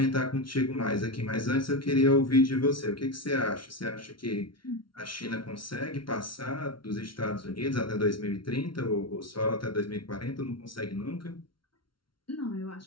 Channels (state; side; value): late; right; 0.73 ms